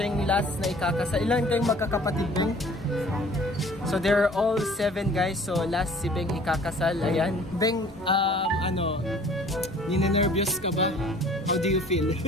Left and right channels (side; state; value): both; normal; correlation 0.51